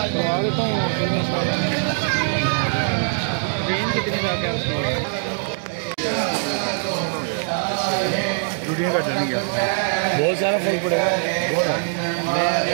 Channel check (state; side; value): silent; left; digital silence